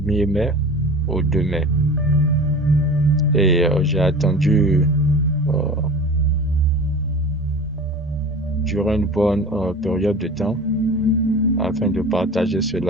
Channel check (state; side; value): normal; both; correlation 0.37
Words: mai au 2 mai. Et j'ai attendu durant une bonne période de temps afin de partager